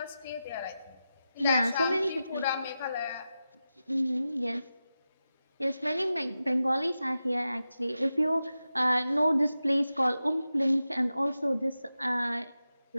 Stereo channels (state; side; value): inverted; both; correlation -0.92